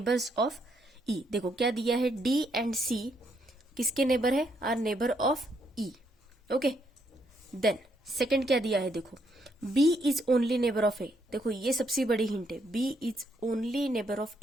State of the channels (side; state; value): both; normal; correlation 0.74